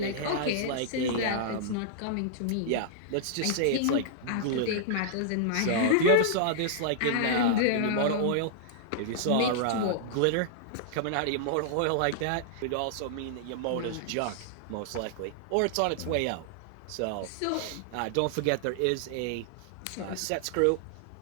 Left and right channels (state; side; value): different; both; correlation -0.01